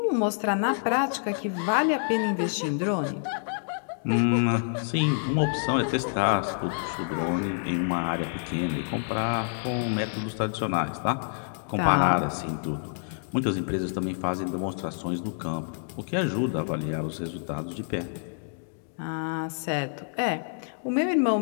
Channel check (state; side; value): silent; right; digital silence